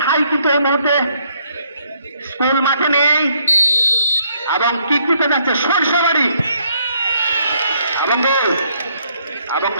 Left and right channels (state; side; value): inverted; both; correlation -0.69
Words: ঠাই কিন্তু এই মুহূর্তে স্কুল মাঠে নেই এবং কিক দিতে যাচ্ছে সরিষাবাড়ি এবং